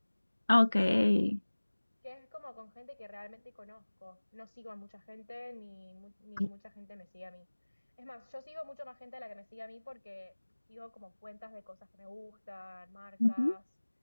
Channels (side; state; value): both; inverted; correlation -1.00